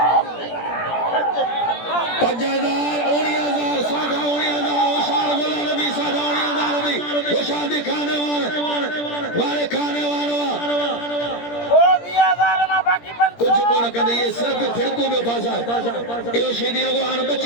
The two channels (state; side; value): late; right; 17 ms